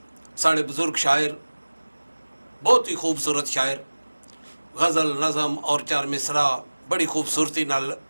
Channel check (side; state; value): both; inverted; correlation -1.00